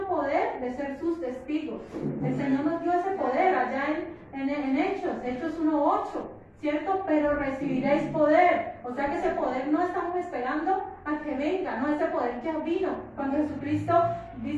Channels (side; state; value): both; identical; correlation 1.00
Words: poder de ser sus testigos. El Señor nos dio ese poder allá en Hechos 1:8, ¿cierto? Pero recibiréis poder. O sea que ese poder no estamos esperando a que venga, no, ese poder ya vino. Cuando Jesucristo,